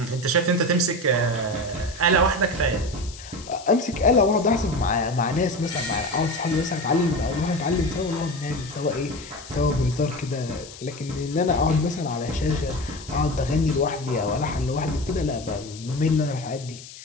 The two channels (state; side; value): noise; left; hiss, 16 dB below the sound